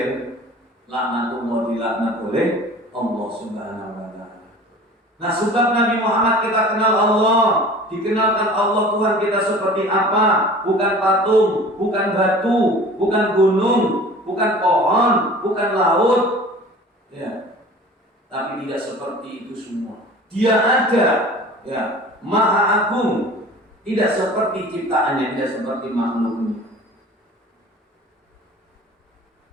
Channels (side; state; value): both; normal; correlation 0.43